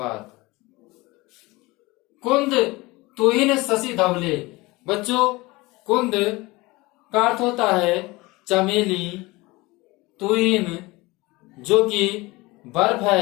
कुंद तुहिन शशि धवले। बच्चों, कुंद का अर्थ होता है चमेली, तुहिन जो कि बर्फ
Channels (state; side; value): quieter; right; 22.2 dB